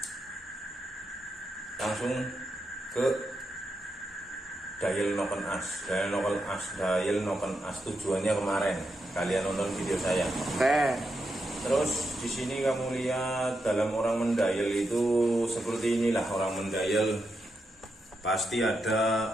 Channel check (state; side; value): normal; both; correlation 0.85